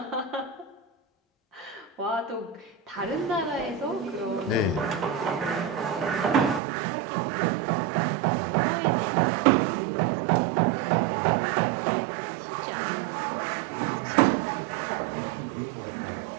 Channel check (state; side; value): drops out; left; at 6.6 s